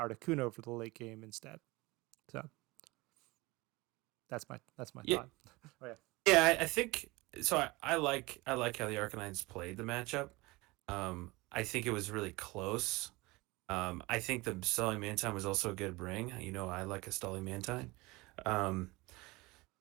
for the late game instead. So that's my Yeah. thought. Oh yeah. Yeah, I think so. I like how the Arcanines played the matchup. I think it was really close. I think the Stalling Mantine was also a good bring. You know, I like a Stalling Mantine.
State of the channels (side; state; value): left; quieter; 22.9 dB